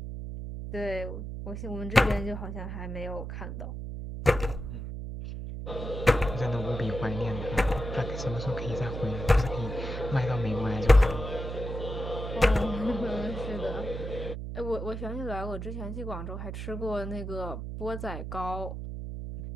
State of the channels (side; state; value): right; noise; hum, 6 dB below the sound